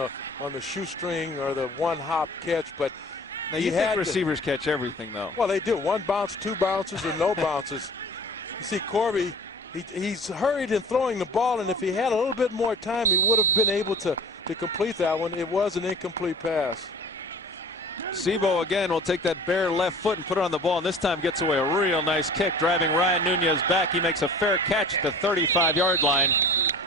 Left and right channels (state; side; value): normal; both; correlation 0.43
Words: shoestring or the one-hop catch, but now you think receivers catch everything, though. Well, they do. 1 bounce, 2 bounces, or no bounces. You see, Corby, he's hurried in throwing the ball, and if he had a little bit more time, he would have been able to complete that one. It was an incomplete pass. Sebo again will take that bare left foot and put it on the ball, and this time gets away a real nice kick, driving Ryan Nunez back. He makes a fair catch at the 35-yard line.